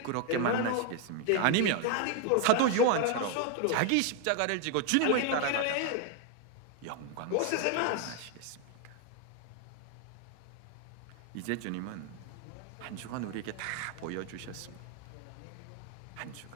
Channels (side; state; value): both; different; correlation 0.01